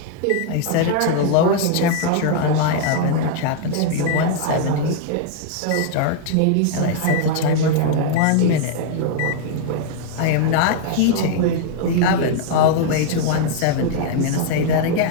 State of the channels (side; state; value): both; different; correlation 0.00